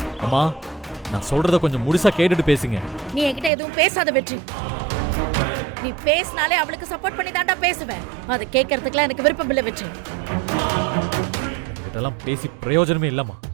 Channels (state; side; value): drops out; left; at 3.5 s